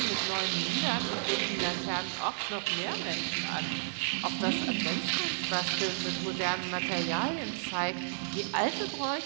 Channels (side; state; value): left; silent; digital silence